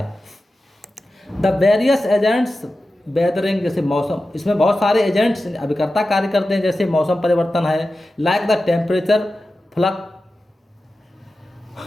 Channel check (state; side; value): normal; both; correlation 0.93